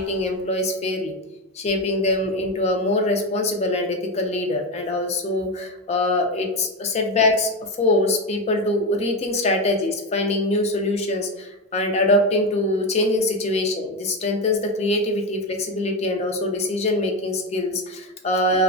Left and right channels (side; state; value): both; normal; correlation 0.15